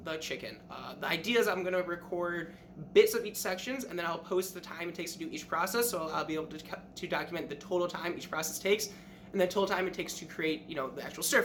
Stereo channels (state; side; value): identical; both; correlation 1.00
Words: the chicken. The idea is I'm going to record bits of each sections, and then I'll post the time it takes to do each process, so I'll be able to document the total time each process takes, and the total time it takes to create, the actual stir